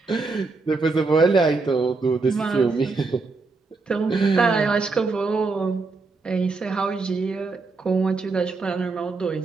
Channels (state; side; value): quieter; left; 4.0 dB